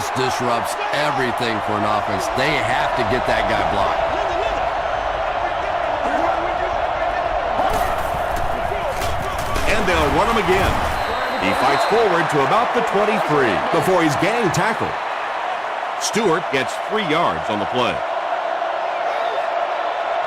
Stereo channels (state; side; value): identical; both; correlation 1.00